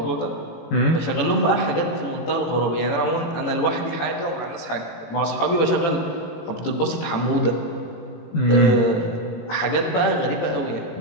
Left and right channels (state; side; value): late; right; 18 ms